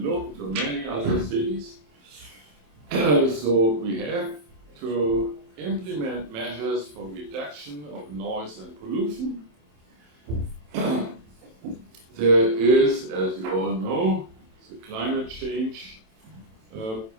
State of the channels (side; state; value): left; late; 27 ms